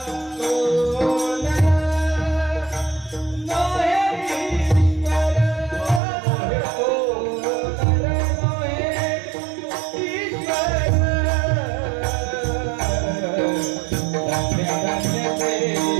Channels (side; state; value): left; drops out; at 6.0 s